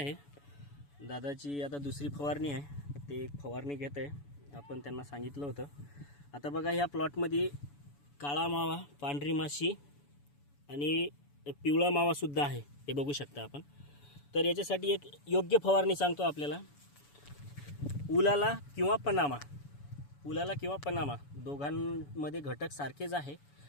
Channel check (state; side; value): late; right; 7.0 ms